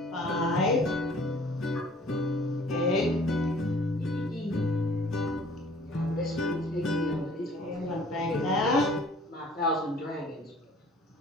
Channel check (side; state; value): both; normal; correlation 0.53